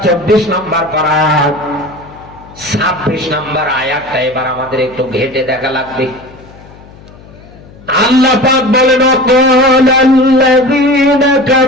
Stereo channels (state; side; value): noise; left; hum, 22 dB below the sound